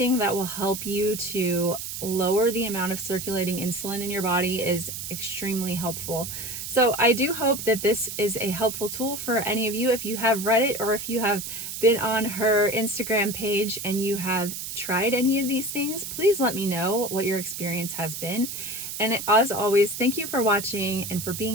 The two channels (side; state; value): right; noise; hiss, 7 dB below the sound